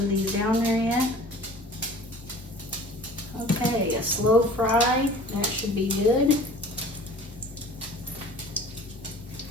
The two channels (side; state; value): both; normal; correlation 0.45